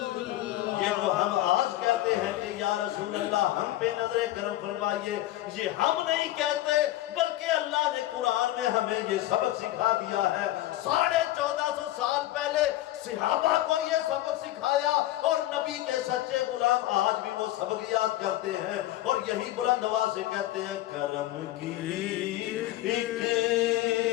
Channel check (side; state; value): right; quieter; 15.3 dB